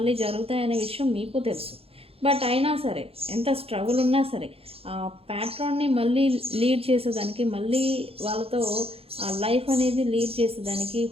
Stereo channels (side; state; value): left; late; 0.28 ms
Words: జరుగుతాయి అనే విషయం మీకు తెలుసు. బట్ అయినా సరే, ఎంత స్ట్రగుల్ ఉన్నా సరే, ఆ ప్యాట్రాన్ని మళ్ళీ లీడ్ చేసేదానికి, మళ్ళీ వాళ్ళతో ఆ లైఫ్ అనేది లీడ్ చేసేదానికి,